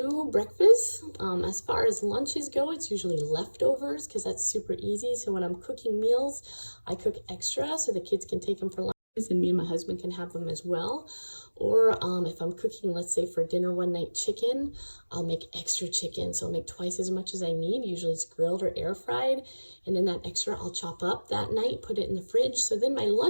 breakfasts. As far as lunches go, it's usually leftovers because that's super easy. So when I'm cooking meals, I cook extra so the kids can take them for lunches and me and my husband can have them as well. Or if I'm cooking, let's say for dinner one night chicken, I'll make extra chicken. So I'll make twice as much as I need. Usually it's grilled or air fried. And then that extra I'll chop up that night, put it in the fridge. So then my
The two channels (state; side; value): inverted; both; correlation -1.00